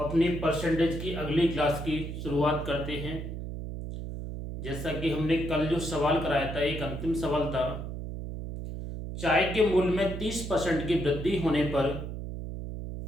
परसेंटेज की अगली क्लास की शुरुआत करते हैं। जैसा कि हमने कल जो सवाल कराया था, एक अंतिम सवाल था, चाय के मूल्य में 30% की वृद्धि होने पर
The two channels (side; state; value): right; noise; hum, 7 dB below the sound